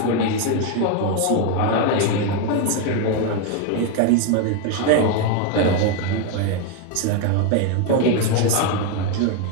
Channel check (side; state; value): both; different; correlation 0.01